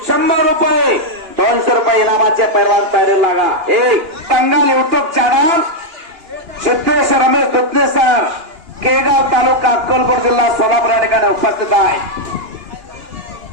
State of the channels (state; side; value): late; left; 2.9 ms